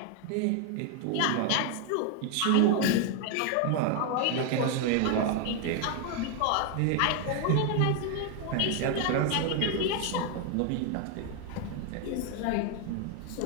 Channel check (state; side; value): different; both; correlation 0.01